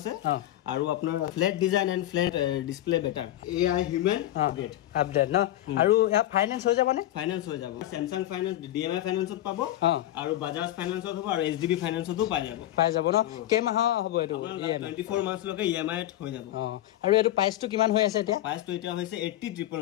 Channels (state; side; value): quieter; right; 13.9 dB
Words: আৰু আপোনাৰ flat design and flat display better AI human update no আৰু ইয়া ফাইনান্স হৈ যাবনে ফাইনান্স হৈ যাব Samsung finance DMI finance পাব আৰু Bajaj finance হ'ব আৰু HDB finance তো পাই যাব ন কেমাহ হ'ব এটো 24 মাস লকে EMI হৈ যাব আৰু এটো প্ৰাইসটো কিমান হৈ আছে এতিয়া প্ৰাইসটো এতিয়া হৈছে